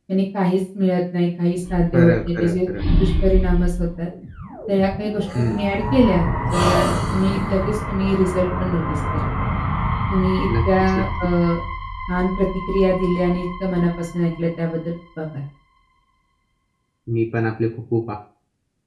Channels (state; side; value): identical; both; correlation 1.00